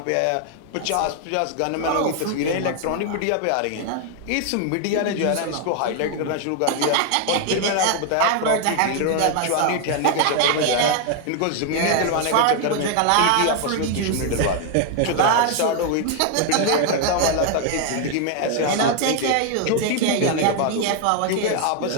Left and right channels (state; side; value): different; both; correlation 0.00